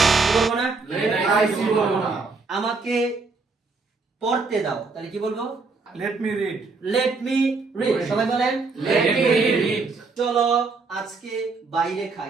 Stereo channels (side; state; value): left; quieter; 4.1 dB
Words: কি বলবো না? লেট আই সি বলবো না। আমাকে পড়তে দাও, তাহলে কি বলবো? Let me read. Let me read. সবাই বলেন লেট মি রিড। চলো আজকে বাইরে